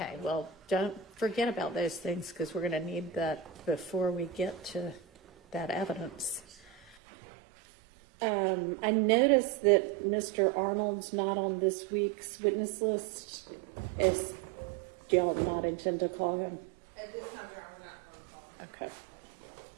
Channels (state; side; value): drops out; left; at 7.0 s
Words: well, don't forget about those things because we're going to need that before we get to that evidence. I noticed that Mr. Arnold's not on this week's witness list. Do y'all not intend to call him? At this time, we're not going to call. Okay.